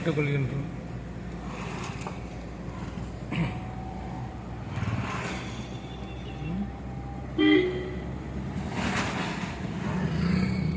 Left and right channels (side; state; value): both; identical; correlation 1.00